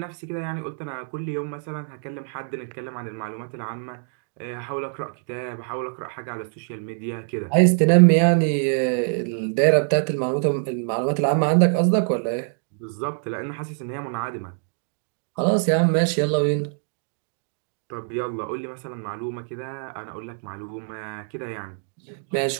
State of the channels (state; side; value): silent; left; 62 dB below the other